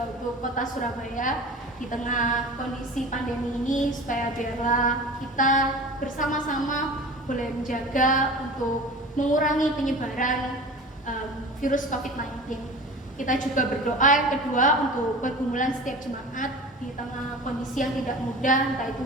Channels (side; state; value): both; normal; correlation 0.36